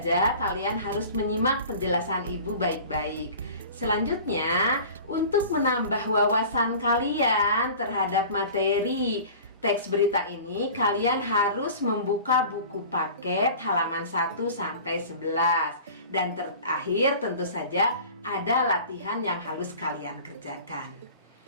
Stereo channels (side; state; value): both; inverted; correlation -0.41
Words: kalian harus menyimak penjelasan Ibu baik-baik. Selanjutnya, untuk menambah wawasan kalian terhadap materi teks berita ini, kalian harus membuka buku paket halaman 1 sampai 11. Dan terakhir tentu saja ada latihan yang harus kalian kerjakan.